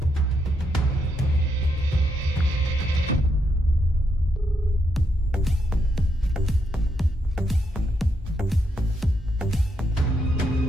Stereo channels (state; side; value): normal; both; correlation 0.79